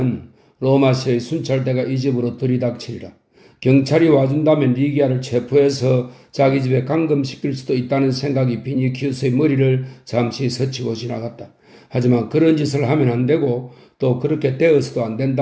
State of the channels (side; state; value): both; identical; correlation 1.00